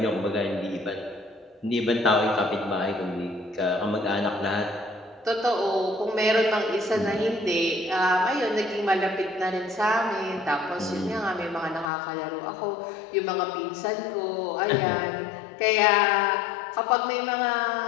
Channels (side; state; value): right; drops out; at 11.9 s